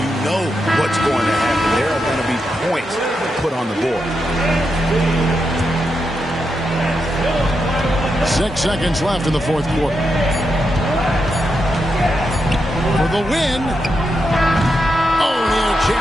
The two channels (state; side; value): normal; both; correlation 0.85